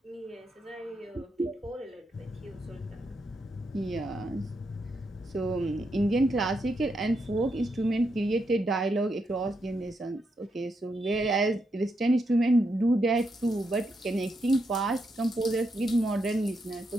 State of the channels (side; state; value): both; normal; correlation 0.82